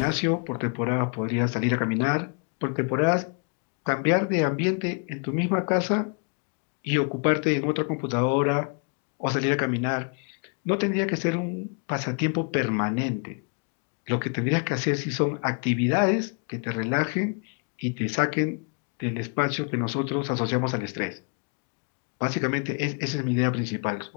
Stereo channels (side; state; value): right; quieter; 38.4 dB